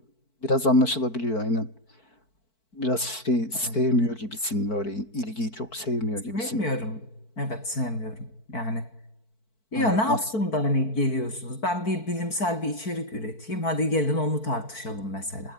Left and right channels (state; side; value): late; right; 4.5 ms